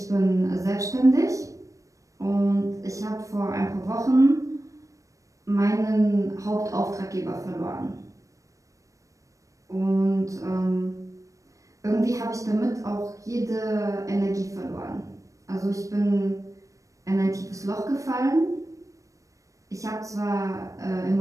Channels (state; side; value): late; left; 0.16 ms